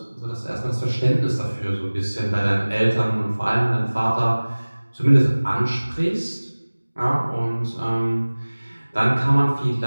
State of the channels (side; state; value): both; inverted; correlation -1.00